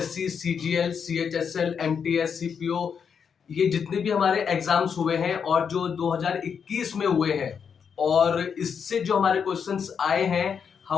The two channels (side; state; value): right; quieter; 6.8 dB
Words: CGL, CHSL, MTS, CPO, ये जितने भी हमारे एग्जाम्स हुए हैं और जो 2021 में हुए हैं, और इससे जो हमारे क्वेश्चंस आए हैं,